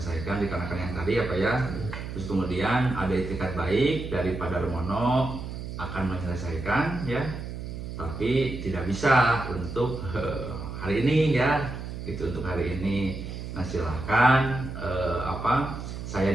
dikarenakan yang tadi ya Pak ya. Terus kemudian ada itikat baik dari Pak Darmono akan menyelesaikan ya, tapi tidak bisa untuk hari ini ya, gitu untuk hari ini. Nah, silahkan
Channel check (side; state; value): right; noise; hum, 8 dB below the sound